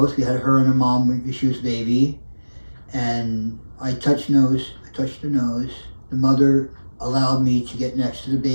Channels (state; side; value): inverted; both; correlation -1.00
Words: We had her and her mom when she was a baby. And I touched her nose. The mother allowed me to get next to the